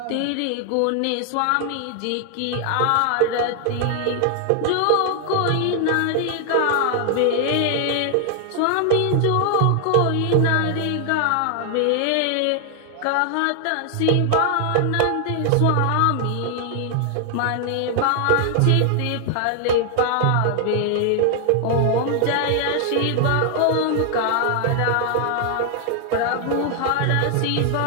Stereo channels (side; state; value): both; different; correlation 0.00